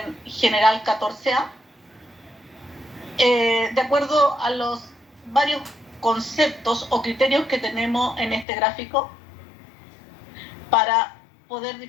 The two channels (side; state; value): right; drops out; at 8.5 s